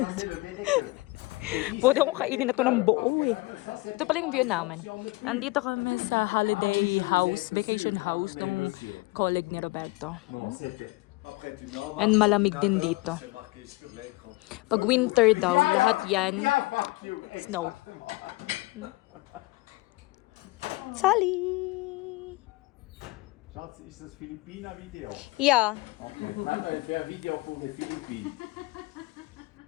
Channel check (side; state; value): right; quieter; 22.5 dB